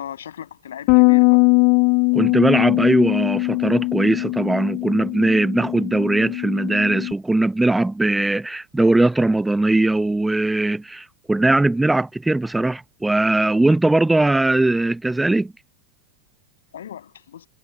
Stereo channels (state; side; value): normal; both; correlation 0.69